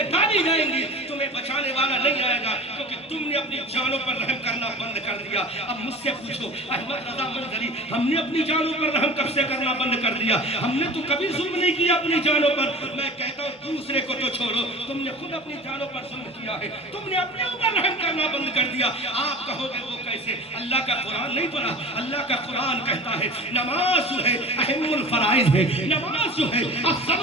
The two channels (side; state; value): both; normal; correlation 0.37